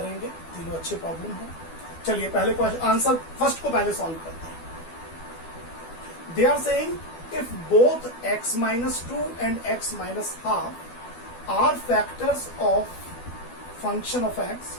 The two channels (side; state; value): right; late; 12 ms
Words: तीनों अच्छे प्रॉब्लम हैं। चलिए पहले क्वेश्चन आंसर फर्स्ट को पहले सॉल्व करते हैं। They are saying if both x minus 2 and x minus half are factors of function of x